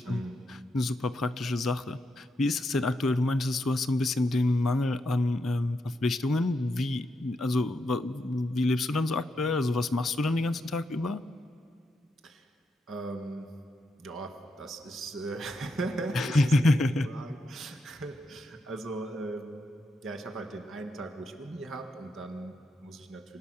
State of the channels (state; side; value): normal; both; correlation 0.83